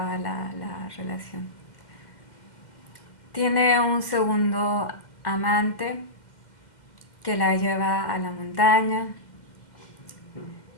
la relación. Tiene un segundo amante que la lleva a la montaña,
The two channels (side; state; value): right; late; 2.1 ms